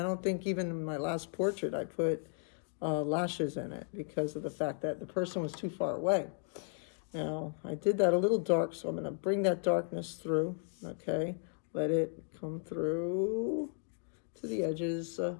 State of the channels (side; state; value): right; silent; 54 dB below the other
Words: think even in my last portrait I put lashes in it because of the fact that the person was too far away. Now, I did that a little dark, so I'm going to bring that darkness through, okay? Let it come through to the edges. And